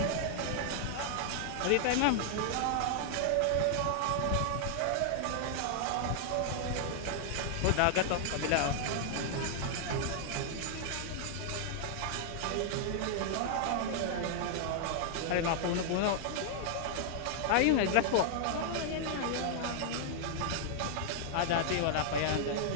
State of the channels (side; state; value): both; different; correlation -0.01